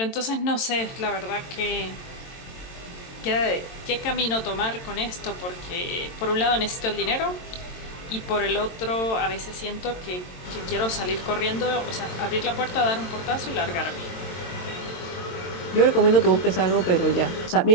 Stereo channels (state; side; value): late; right; 22 ms